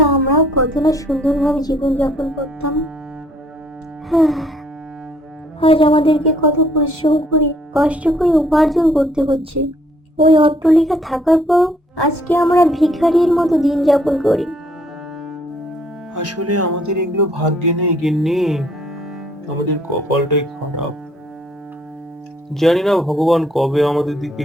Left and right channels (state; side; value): normal; both; correlation 0.64